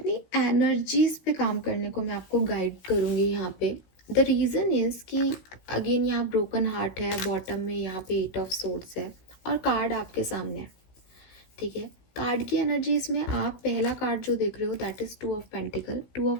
एनर्जीज पे काम करने को मैं आपको गाइड करूँगी यहाँ पे। द रीज़न इज़ कि अगेन यहाँ ब्रोकन हार्ट है, बॉटम में यहाँ पे 8 ऑफ सोर्ड्स है और कार्ड आपके सामने है। ठीक है, कार्ड की एनर्जीज में आप पहला कार्ड जो देख रहे हो that is 2 of pentacle. 2 of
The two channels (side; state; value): right; late; 16 ms